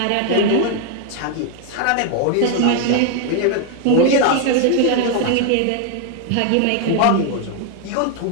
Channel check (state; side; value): different; both; correlation 0.01